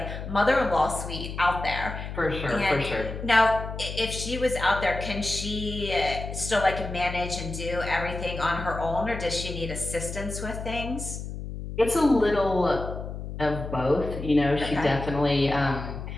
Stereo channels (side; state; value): left; noise; hum, 8 dB below the sound